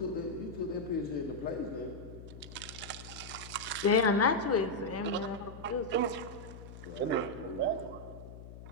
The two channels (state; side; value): noise; left; hum, 14 dB below the sound